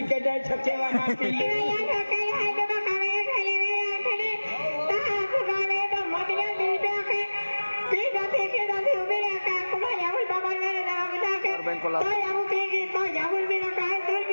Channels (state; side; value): inverted; both; correlation -1.00